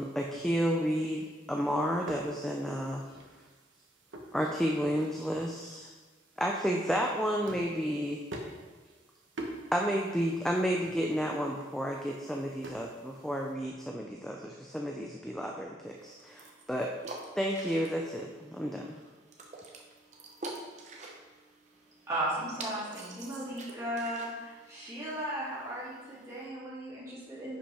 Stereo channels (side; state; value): both; normal; correlation 0.71